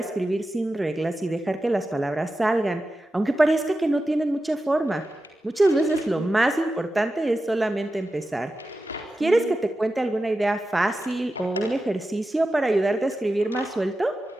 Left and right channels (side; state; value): both; normal; correlation 0.92